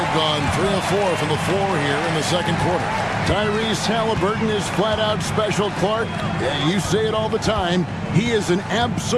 gone 3 of 4 from the floor here in the second quarter. Tyrese Halliburton is flat-out special, Clark. You say it all the time. He is an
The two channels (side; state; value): both; identical; correlation 1.00